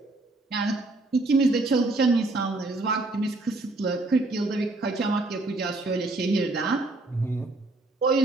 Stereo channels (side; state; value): left; quieter; 3.0 dB